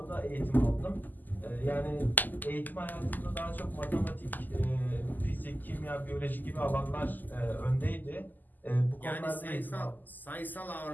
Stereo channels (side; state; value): right; late; 0.085 ms